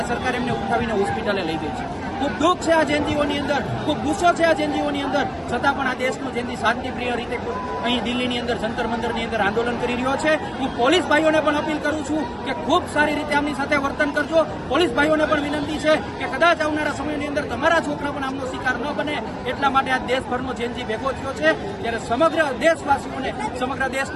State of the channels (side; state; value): both; identical; correlation 1.00